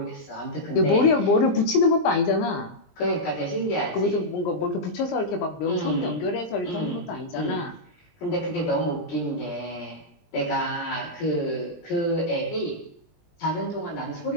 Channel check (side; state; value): right; late; 20 ms